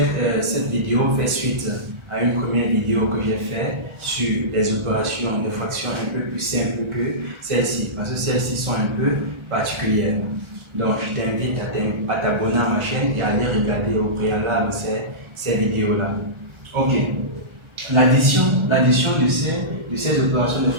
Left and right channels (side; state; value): left; late; 1.4 ms